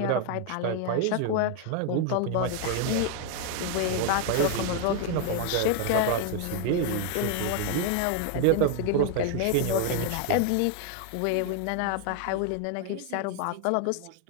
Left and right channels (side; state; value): both; different; correlation 0.00